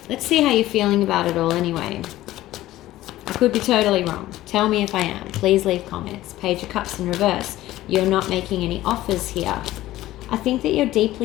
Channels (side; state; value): right; quieter; 15.5 dB